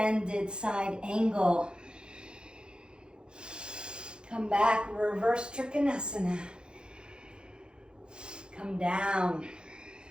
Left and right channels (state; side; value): late; left; 0.049 ms